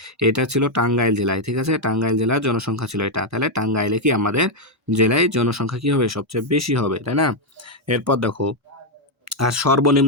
এটা ছিল টাঙ্গাইল জেলায়, ঠিক আছে? টাঙ্গাইল জেলার জনসংখ্যা ছিল এটা। তাহলে টাঙ্গাইলে কি আমাদের জেলায় জনসংখ্যা কি হবে? সবচেয়ে বেশি হবে, তাই না? এরপর দেখো আর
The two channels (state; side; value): normal; both; correlation 0.01